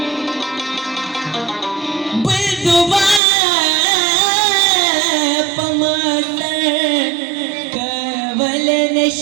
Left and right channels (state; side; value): drops out; left; at 3.2 s